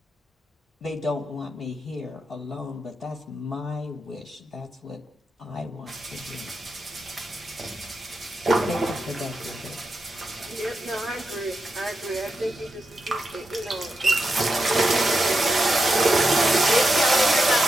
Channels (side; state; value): both; normal; correlation 0.86